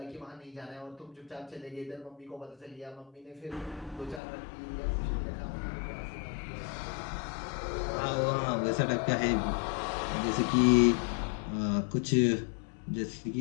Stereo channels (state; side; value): drops out; right; at 4.2 s